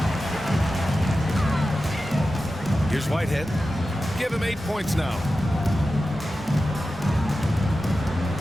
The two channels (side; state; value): both; normal; correlation 0.93